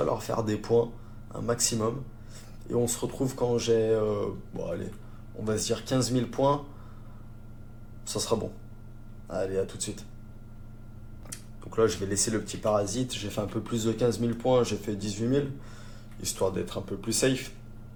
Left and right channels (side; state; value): both; identical; correlation 1.00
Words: faire des points, un maximum. Et on se retrouve quand j'ai, bon allez, on va se dire 15 000 points, ça sera bon. Allez, à tout de suite. Donc là, je vais laisser le petit parasite. J'ai fait un peu plus de 15 000 points, j'ai fait 18 000, histoire d'être un peu plus safe.